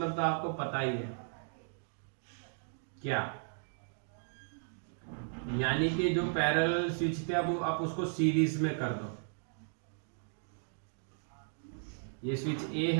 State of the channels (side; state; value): left; silent; digital silence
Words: तो आपको पता ही है क्या, यानी कि जो पैरेलल स्विच थे अब आप उसको सीरीज में कर दो। ये स्विच ए